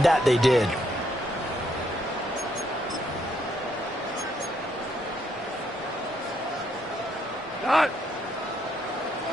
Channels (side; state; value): both; normal; correlation 0.73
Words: that they did. Done.